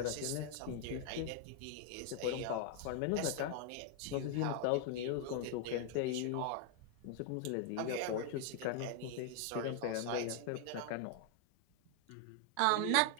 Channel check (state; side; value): different; both; correlation 0.00